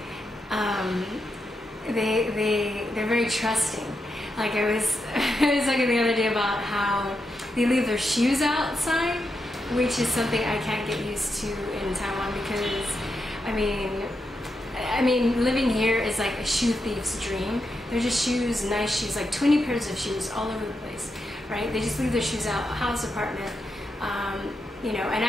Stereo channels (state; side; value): normal; both; correlation 0.85